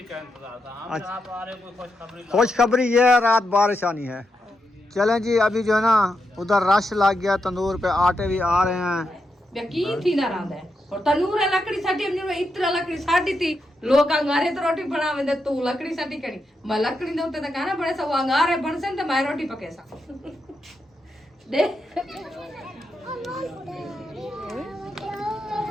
का इंतजार था। हम अच्छा। आप आ रहे कोई खुशखबरी खुशखबरी ये है, रात बारिश आनी है। चलें जी, अभी जो है ना उधर रश लग गया, तंदूर पे आटे भी आ रहे हैं। यकीन थी ना रांदे और तनूर है लकड़ी साटी हमने इतना लकड़ी साटी थी लोग अंगारे तो रोटी बनावे दे तू लकड़ी साटी करी मैं लकड़ी दे उते त खाना बड़े सब अंगारे बनसे त मैं रोटी पके सा दे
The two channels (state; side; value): normal; both; correlation 0.85